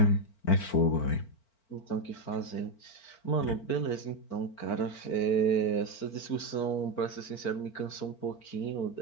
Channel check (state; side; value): late; right; 4.4 ms